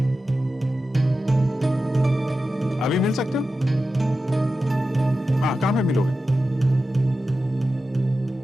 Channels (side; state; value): both; normal; correlation 0.92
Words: अभी मिल सकते हो? हाँ, कहाँ पे मिलोगे?